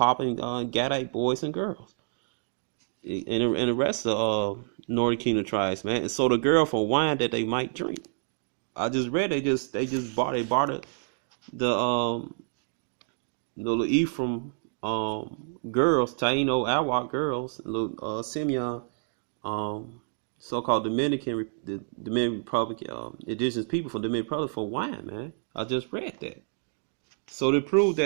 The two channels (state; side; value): silent; left; digital silence